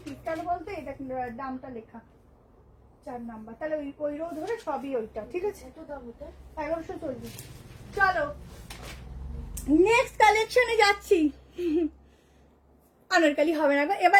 পিস, কেন বলতো এটা দামটা লেখা 4 নাম্বার, তাহলে ওই রো ধরে সবই ওইটা, ঠিক আছে। এত দাম এটা 1140। চলো নেক্সট কালেকশনে যাচ্ছি। আনারকালি হবে না, এবার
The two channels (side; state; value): both; identical; correlation 1.00